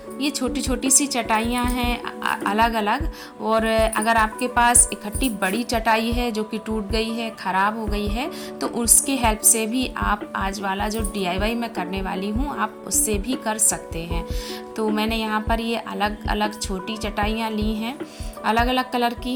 ये छोटी छोटी सी चटाइयाँ हैं अलग अलग। और अगर आपके पास इकट्ठी बड़ी चटाई है जो कि टूट गई है, ख़राब हो गई है, तो उसके हेल्प से भी आप आज वाला जो DIY मैं करने वाली हूँ आप उससे भी कर सकते हैं। तो मैंने यहाँ पर ये अलग अलग छोटी चटाइयाँ ली हैं, अलग अलग कलर की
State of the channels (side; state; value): both; identical; correlation 1.00